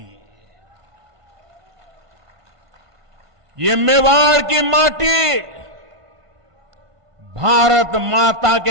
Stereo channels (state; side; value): late; left; 1.5 ms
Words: ये मेवाड़ की माटी भारत माता